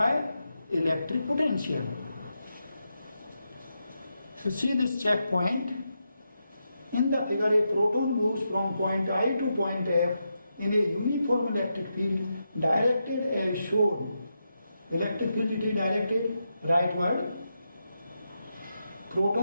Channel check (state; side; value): inverted; both; correlation -0.86